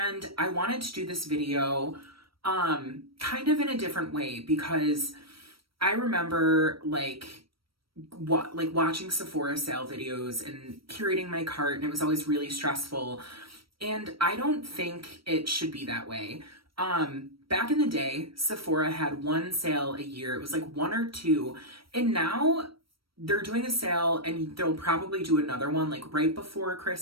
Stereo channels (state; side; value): late; left; 0.75 ms